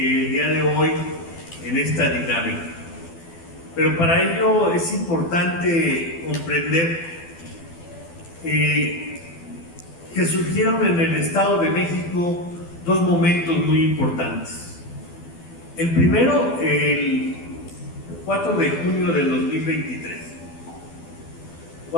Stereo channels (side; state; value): right; late; 12 ms